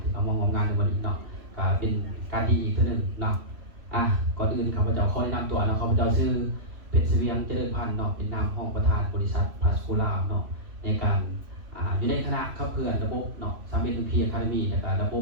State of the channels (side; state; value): left; late; 3.1 ms